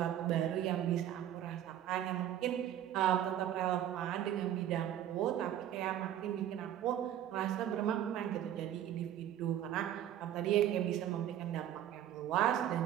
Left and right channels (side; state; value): left; quieter; 11.2 dB